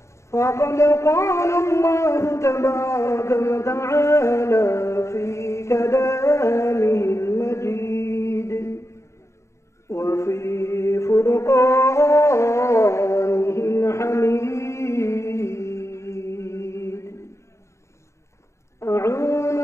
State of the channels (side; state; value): right; late; 0.14 ms